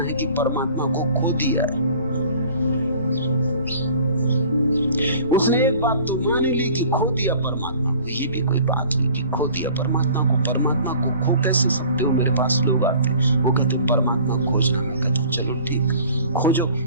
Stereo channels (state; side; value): inverted; both; correlation -0.49